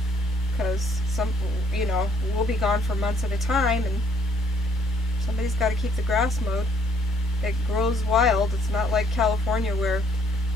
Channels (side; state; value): both; normal; correlation 0.65